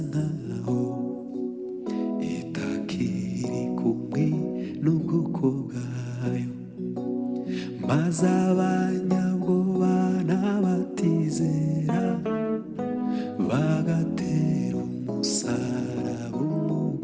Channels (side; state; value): both; identical; correlation 1.00